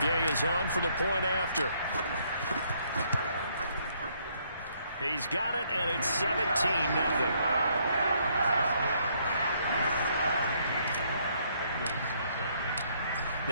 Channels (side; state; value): both; inverted; correlation -0.69